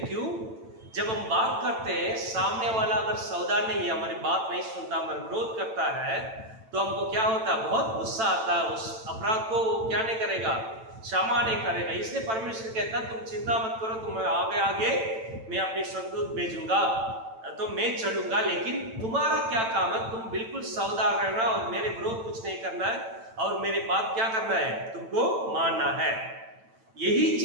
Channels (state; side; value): late; left; 9.0 ms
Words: क्यों, जब हम बात करते हैं, सामने वाला अगर सावधान नहीं है, हमारी बात नहीं सुनता, हमारा विरोध करता है, तो हमको क्या होता है, बहुत गुस्सा आता है, उस अपराध को क्या नहीं करेगा, क्षमा नहीं करेगा। इसलिए परमेश्वर कहता है तुम चिंता मत करो, तुम आगे आगे मैं अपने स्वर्गदूत भेजूंगा, तो मैं चलूंगा, लेकिन तुम्हारा क्या काम है, तुम बिल्कुल सावधान रहना और मेरे विरोध कुछ नहीं करना है, और मेरी बात क्या करना है, तुमको मानना है। यही